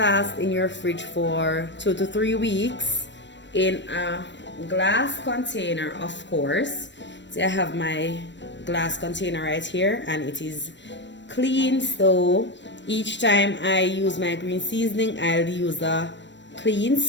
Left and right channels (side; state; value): right; late; 0.53 ms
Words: in your fridge for 2 to 3 weeks in a glass container, of course. So I have my glass container right here, and it is clean. So each time I use my green seasoning, I'll use a clean